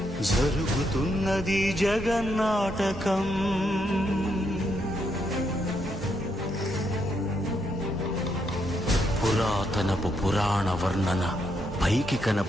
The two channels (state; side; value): normal; both; correlation 0.78